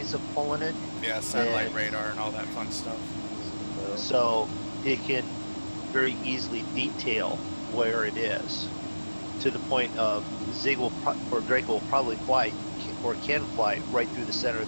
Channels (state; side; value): inverted; both; correlation -1.00